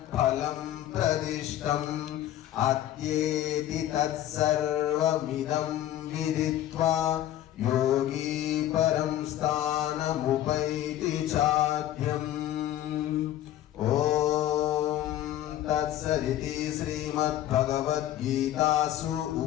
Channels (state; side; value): quieter; right; 12.8 dB